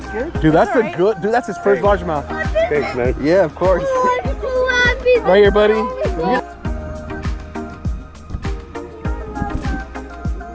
scared. Dude, that's a good. Dude, that's his first largemouth. Thanks, man. Yeah, of course. Right here, buddy.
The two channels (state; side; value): identical; both; correlation 1.00